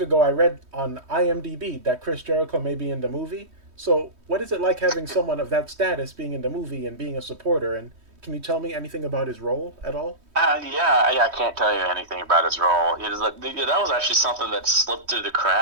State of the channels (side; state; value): left; late; 3.2 ms